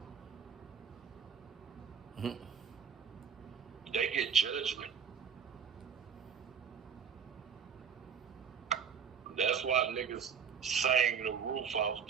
Mm-hmm. They get judgment. That's why niggas sang the roof off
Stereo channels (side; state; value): left; quieter; 6.9 dB